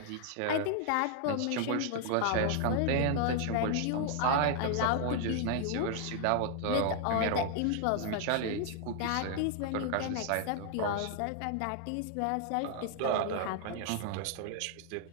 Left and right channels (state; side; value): different; both; correlation 0.00